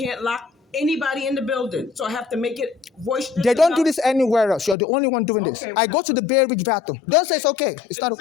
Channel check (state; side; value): drops out; right; at 4.8 s